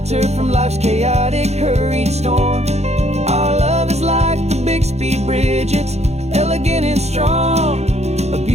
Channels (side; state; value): left; late; 0.31 ms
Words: from life's chaotic, hurried storm. Our love is like the Bixby Bridge, it's elegant and strong, a